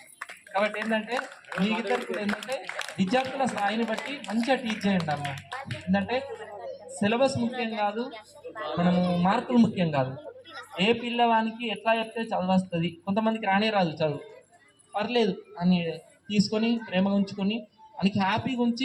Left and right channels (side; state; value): both; identical; correlation 1.00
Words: కాబట్టి ఏంటంటే మీకిద్దరు కూడా ఏంటంటే విద్యార్థుల స్థాయిని బట్టి మంచిగా టీచ్ చేయండి అమ్మ. ఏంటంటే సిలబస్ ముఖ్యం కాదు, మనము మార్కులు ముఖ్యం కాదు. ఏ పిల్లవానికి ఎట్లా చెప్తే చదువు వస్తుంది, కొంతమందికి రానే రాదు చదువు, పర్లేదు అని తీసుకొని ప్రేమగా ఉంచుకొని మనకి హ్యాపీగా